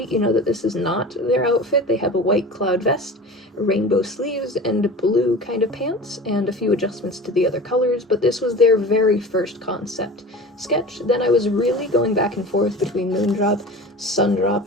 you know that this is not their outfit. They have a white cloud vest, rainbow sleeves, and blue kind of pants, and a few adjustments to the other colors, but this was their very first concept sketch. Then I was really going back and forth between Moondrop,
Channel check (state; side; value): normal; both; correlation 0.36